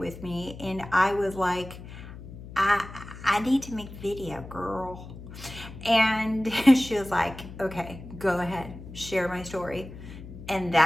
me, and I was like, I need to make video, girl. And she was like, okay, go ahead, share my story. And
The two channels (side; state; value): left; noise; hum, 14 dB below the sound